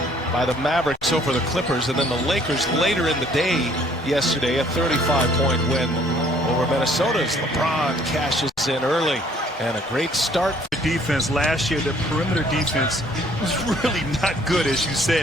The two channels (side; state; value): both; normal; correlation 0.60